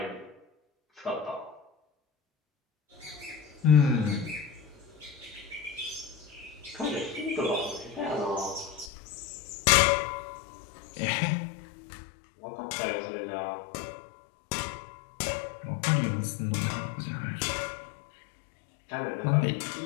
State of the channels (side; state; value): right; drops out; at 8.9 s